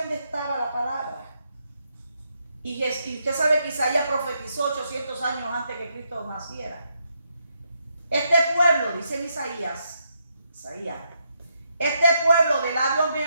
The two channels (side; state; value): both; inverted; correlation -0.79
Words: estaba la palabra. Y usted sabe que Isaías profetizó 800 años antes que Cristo naciera. Este pueblo, dice Isaías, este pueblo de labios